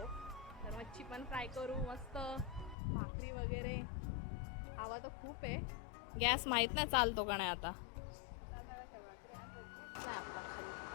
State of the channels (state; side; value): drops out; right; at 2.8 s